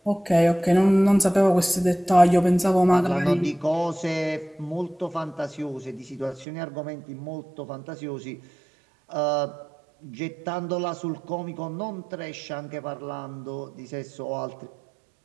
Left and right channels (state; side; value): drops out; left; at 6.5 s